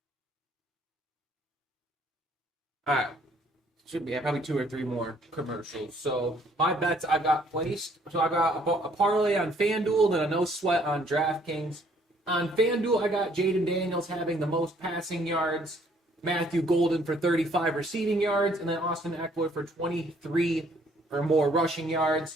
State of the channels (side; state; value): both; normal; correlation 0.63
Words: All right. Should be probably 2 or 3 more commercials. So my bets I got placed. So I got a parlay on FanDuel, then a no sweat on DraftKings. On FanDuel, I got Jaden Daniels having the most passing yards, Matthew Golden for 35 receiving yards, and then Austin Eckler for 23 or more rushing